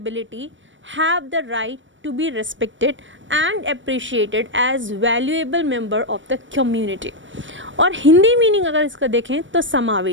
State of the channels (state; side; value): late; left; 0.56 ms